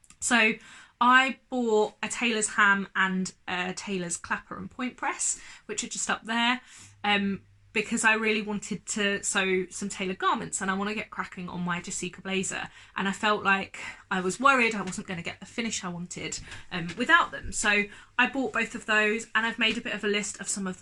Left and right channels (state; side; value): identical; both; correlation 1.00